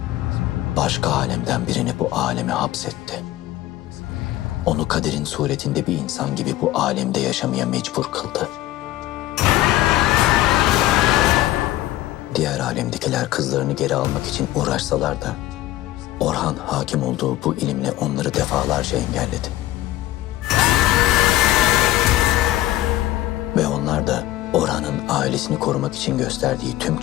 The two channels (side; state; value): right; quieter; 15.6 dB